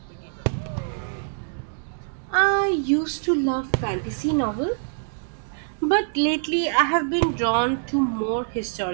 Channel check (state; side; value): silent; left; digital silence